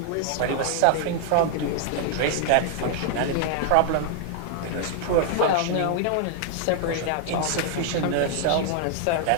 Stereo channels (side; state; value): both; different; correlation -0.01